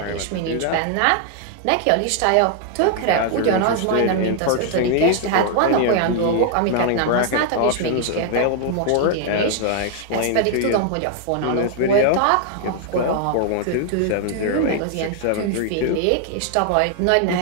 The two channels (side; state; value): both; different; correlation 0.00